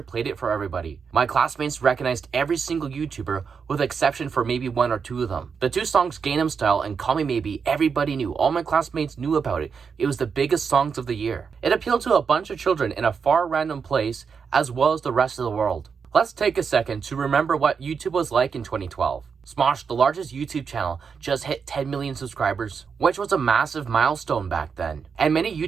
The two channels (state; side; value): quieter; left; 6.0 dB